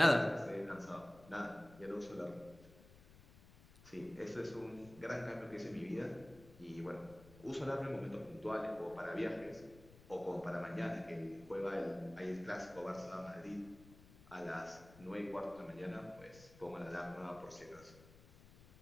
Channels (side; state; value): left; noise; rumble, 21 dB below the sound